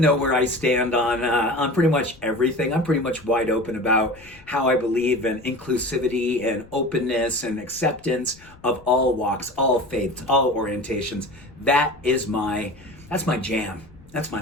know where I stand on pretty much everything. I'm pretty much wide open about how I believe in inclusivity and openness and acceptance of all walks, all faiths, all orientations. That's my jam. That's my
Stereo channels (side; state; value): left; noise; rumble, 24 dB below the sound